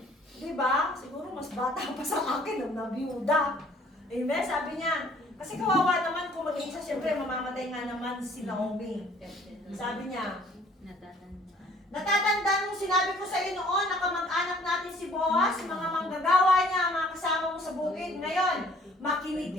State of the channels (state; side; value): normal; both; correlation 0.57